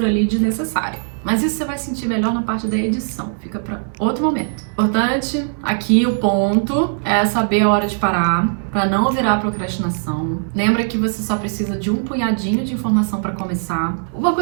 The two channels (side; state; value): left; silent; digital silence